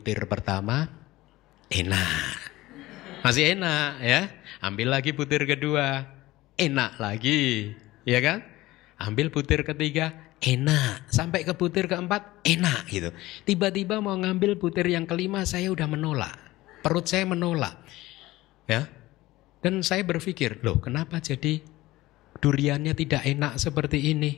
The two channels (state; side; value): quieter; right; 18.0 dB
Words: pertama enak. Masih enak ya. Ambil lagi butir kedua, enak lagi, ya kan? Ambil butir ketiga, enak. Sampai ke butir keempat, enak gitu. Tiba-tiba mau ngambil butir yang kelima, saya udah menolak. Perut saya menolak. Ya. Dan saya berpikir, loh kenapa jadi duriannya tidak enak seperti